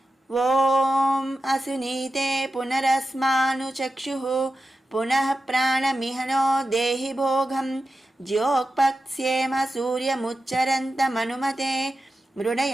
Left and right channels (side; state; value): both; normal; correlation 0.92